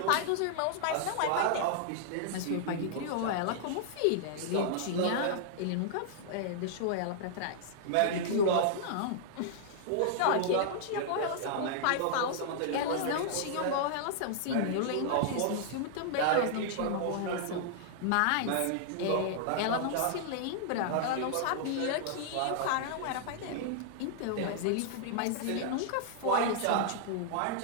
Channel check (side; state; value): both; different; correlation -0.01